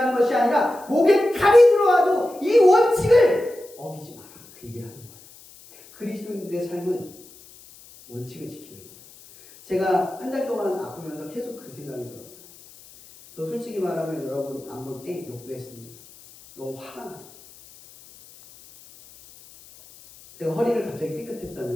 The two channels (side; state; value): left; noise; hiss, 22 dB below the sound